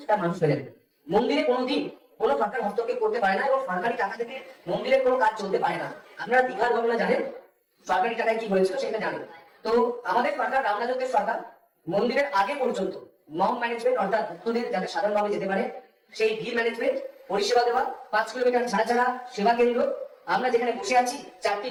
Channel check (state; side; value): identical; both; correlation 1.00